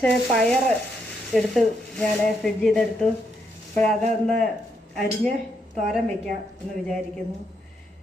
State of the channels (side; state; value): both; normal; correlation 0.78